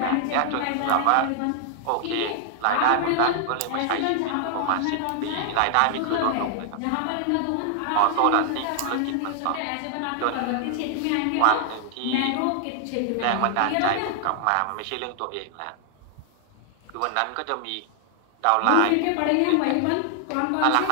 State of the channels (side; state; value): both; different; correlation 0.00